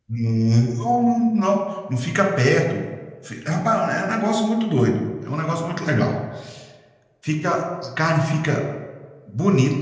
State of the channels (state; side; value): identical; both; correlation 1.00